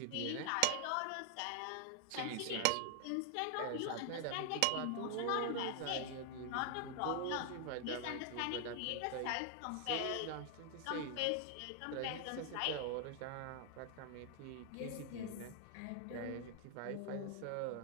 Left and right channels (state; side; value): different; both; correlation 0.00